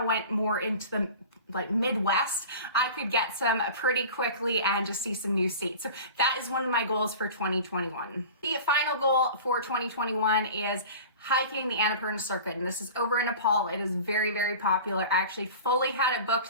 went more into the Midwest, I could get some pretty quickly and just see some new states. So that is one of my goals for 2021. The final goal for 2021 is hiking the Annapurna circuit, and this is over in Nepal. It is very, very popular. I actually fully had it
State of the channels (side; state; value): both; inverted; correlation -0.38